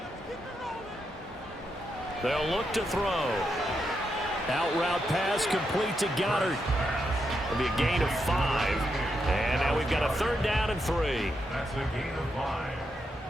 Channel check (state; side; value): normal; both; correlation 0.83